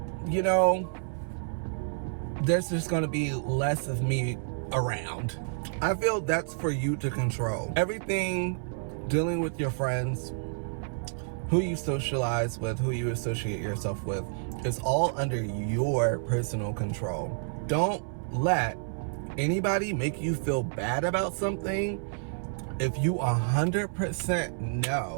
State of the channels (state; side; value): silent; left; 58 dB below the other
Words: you know, there's just going to be less of me around. I feel that's for you to control. Everything dealing with your friends, who you socialize with, who you associate yourself with, is all under your personal control. Don't let anybody make you feel bad about something if you 100%